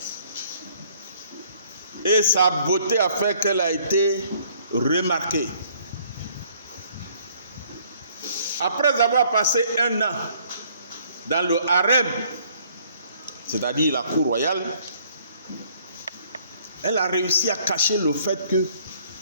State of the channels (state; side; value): inverted; both; correlation -0.61